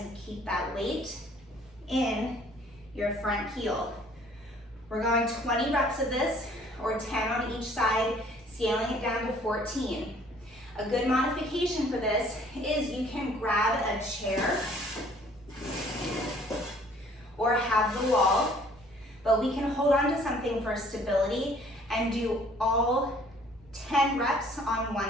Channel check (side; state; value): both; normal; correlation 0.57